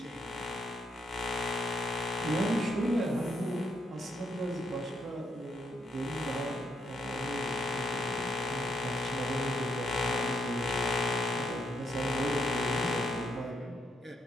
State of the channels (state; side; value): normal; both; correlation 0.75